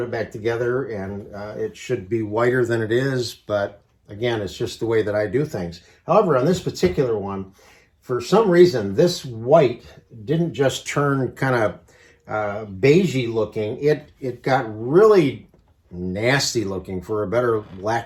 it back together, and it should be whiter than it is, but again, it's just the way that I do things. However, on this particular one, for some reason, this white didn't just turn kind of beigey looking. It got really nasty looking, for a better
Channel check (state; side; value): identical; both; correlation 1.00